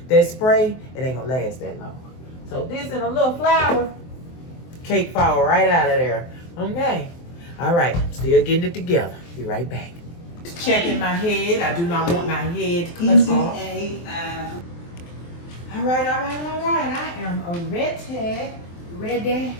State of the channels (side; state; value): right; late; 23 ms